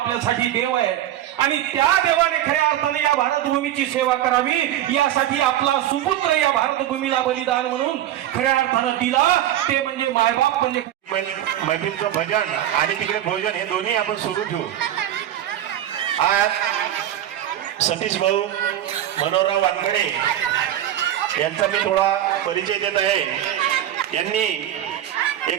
देव आहे आणि त्या देवाने खऱ्या अर्थाने या भारतभूमीची सेवा करावी यासाठी आपला सुपुत्र या भारतभूमीला बलिदान म्हणून खऱ्या अर्थानं दिला, ते म्हणजे मायबाप म्हणजे मैत्रीचं भजन आणि तिकडे भोजन हे दोन्ही आपण सुरू ठेवू। आज सतीश भाऊ मनोहरराव वानखेड़े यांचा मी थोडा परिचय देत आहे। यांनी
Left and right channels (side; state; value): left; quieter; 12.2 dB